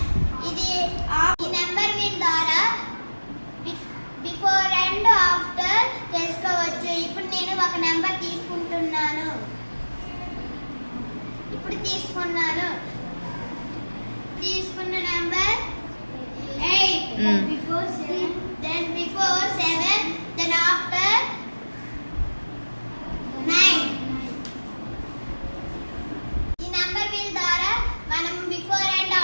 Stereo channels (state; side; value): inverted; both; correlation -1.00